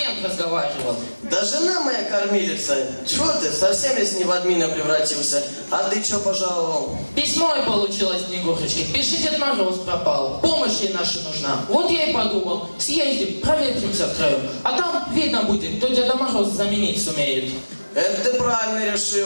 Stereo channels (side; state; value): both; inverted; correlation -1.00